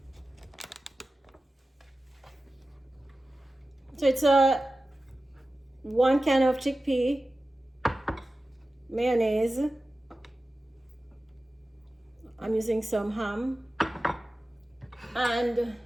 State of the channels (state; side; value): normal; both; correlation 0.94